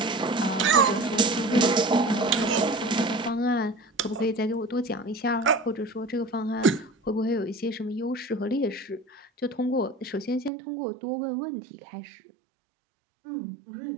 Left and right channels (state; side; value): drops out; left; at 10.5 s